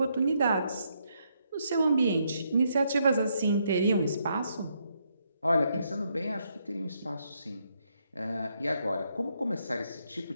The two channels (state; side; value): inverted; both; correlation -0.76